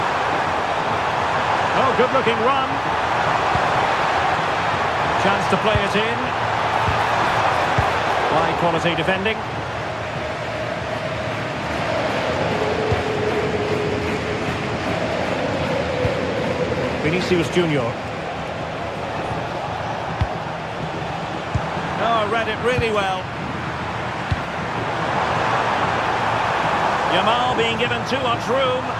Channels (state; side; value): identical; both; correlation 1.00